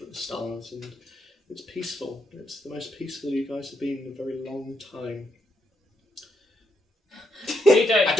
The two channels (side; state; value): both; normal; correlation 0.78